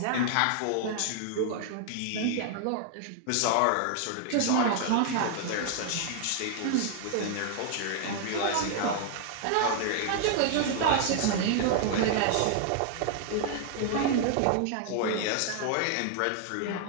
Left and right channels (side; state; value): both; different; correlation 0.00